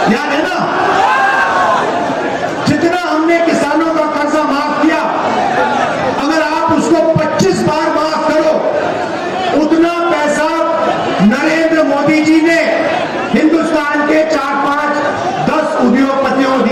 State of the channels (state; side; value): identical; both; correlation 1.00